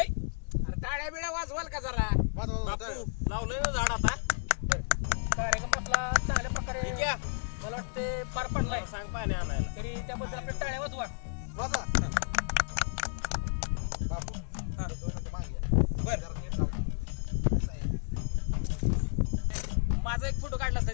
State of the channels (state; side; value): silent; right; digital silence